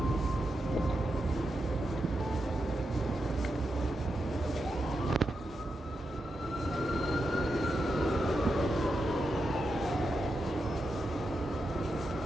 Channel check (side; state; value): both; normal; correlation 0.87